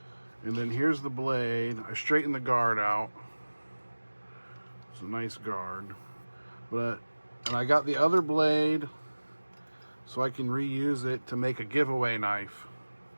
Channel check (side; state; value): both; inverted; correlation -1.00